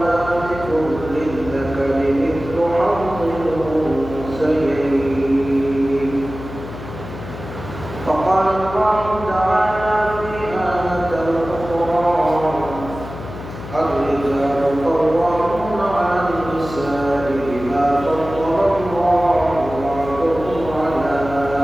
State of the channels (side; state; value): left; noise; hum, 11 dB below the sound